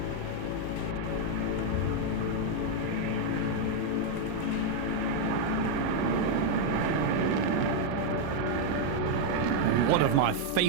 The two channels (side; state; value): both; different; correlation 0.00